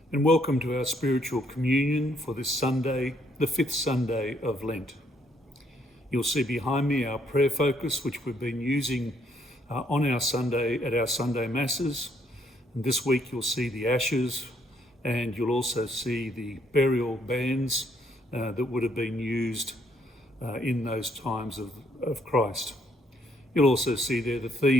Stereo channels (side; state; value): both; normal; correlation 0.70